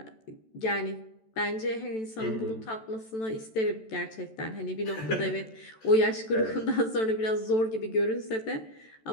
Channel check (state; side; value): late; right; 14 ms